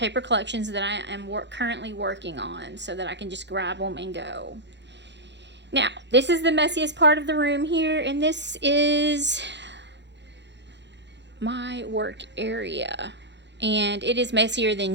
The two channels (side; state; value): left; late; 0.52 ms